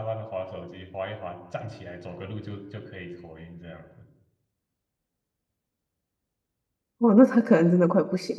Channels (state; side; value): identical; both; correlation 1.00